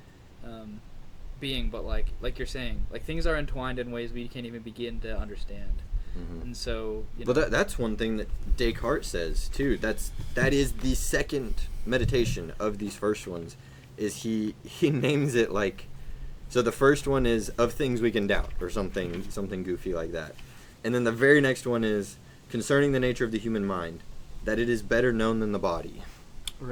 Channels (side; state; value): both; identical; correlation 1.00